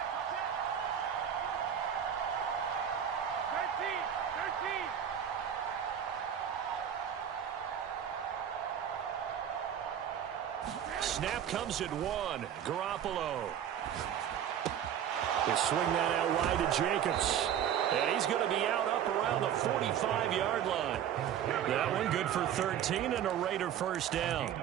Snap comes at 1. Garoppolo. They swing that out wide to Jacobs. And he's going to be out up around the 45-yard line. That one good for 13 and a Raider first down.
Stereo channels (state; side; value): quieter; left; 9.4 dB